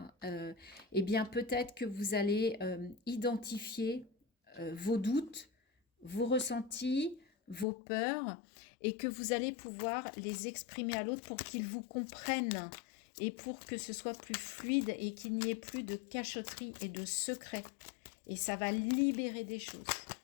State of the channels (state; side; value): drops out; right; at 7.7 s